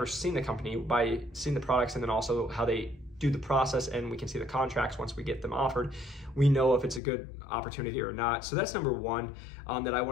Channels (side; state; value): right; drops out; at 7.0 s